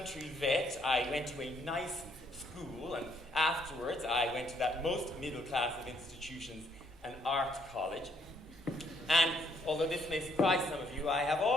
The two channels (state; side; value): normal; both; correlation 0.70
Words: vet. I went to a nice school, and afterwards I went to that most middle class of institutions, an art college. And although this may surprise some of you, I have